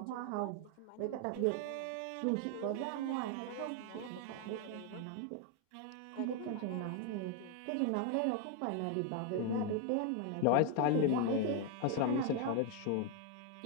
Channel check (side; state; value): both; different; correlation 0.01